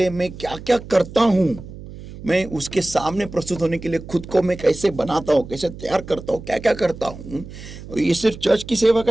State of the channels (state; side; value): noise; right; hum, 14 dB below the sound